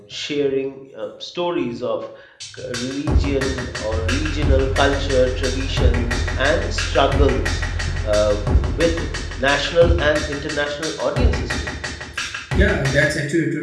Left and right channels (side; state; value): both; identical; correlation 1.00